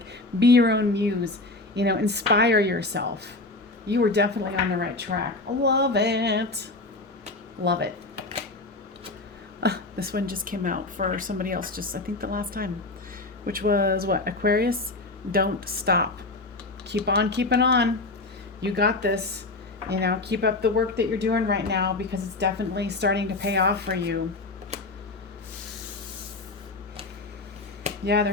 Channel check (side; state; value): right; quieter; 3.1 dB